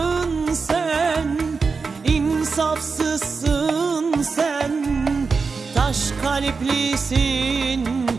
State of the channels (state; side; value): quieter; left; 4.7 dB